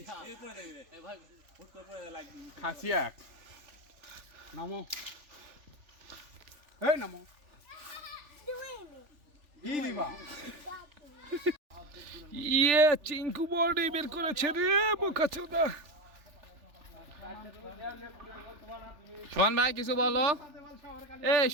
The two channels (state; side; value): late; left; 3.4 ms